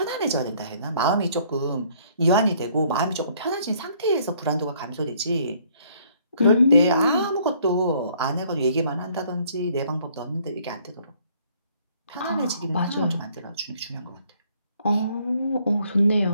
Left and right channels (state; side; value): inverted; both; correlation -0.63